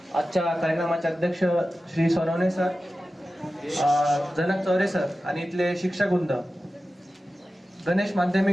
आजच्या कार्यक्रमाचे अध्यक्ष श्री सोनवणे सर, जनक चौरे सर आणि इथले शिक्षक वृंद, गणेश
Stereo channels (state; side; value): normal; both; correlation 0.94